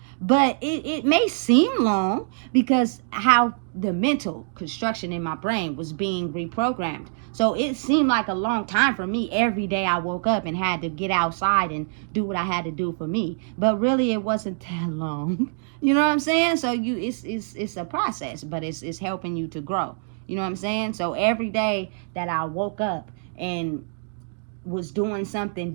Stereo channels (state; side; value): silent; left; 62 dB below the other